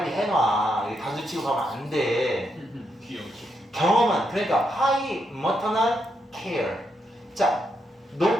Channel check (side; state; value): both; normal; correlation 0.81